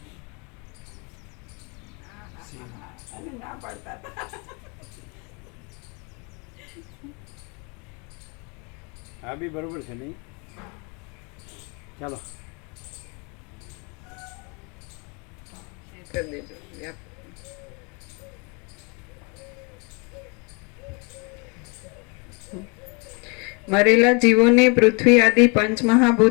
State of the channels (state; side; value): quieter; right; 32.5 dB